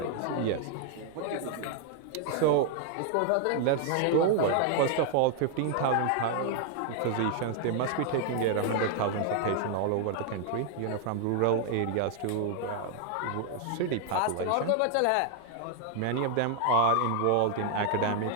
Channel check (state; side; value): different; both; correlation 0.00